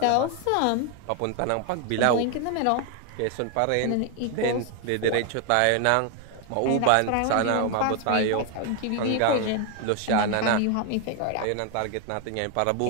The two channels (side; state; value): both; different; correlation 0.01